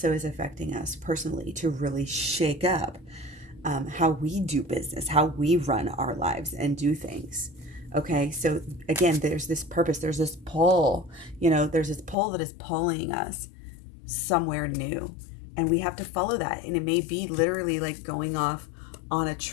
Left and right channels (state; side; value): drops out; right; at 12.2 s